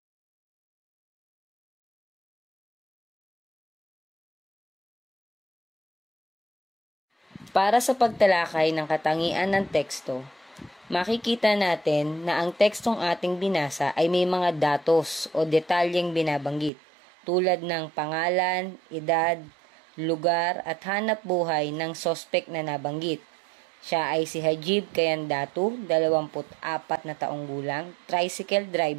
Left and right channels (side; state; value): left; drops out; at 16.7 s